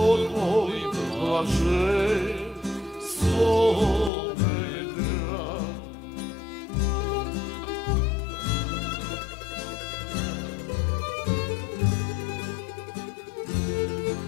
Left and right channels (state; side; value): drops out; right; at 4.1 s